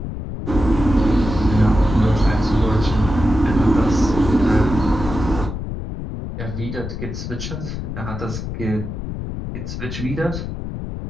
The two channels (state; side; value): noise; left; rumble, 6 dB below the sound